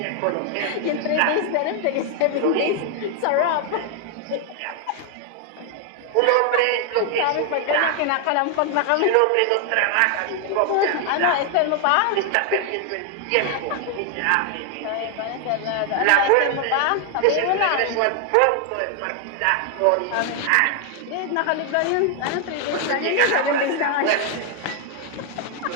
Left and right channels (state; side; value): different; both; correlation 0.00